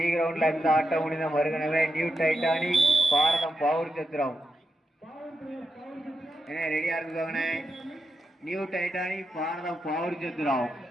கிரவுண்ட்ல இந்த ஆட்டம் முடிந்த மறுகணவே நியூ டைட்டானிக் பாரதம் பவுர் சத்திரம். என்ன ரெடியா இருக்குதாங்கண்ணே? New Titanic Bharatham Pavoor Chathiram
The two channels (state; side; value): normal; both; correlation 0.87